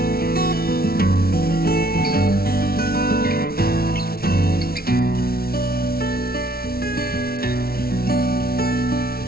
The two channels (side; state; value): right; late; 0.44 ms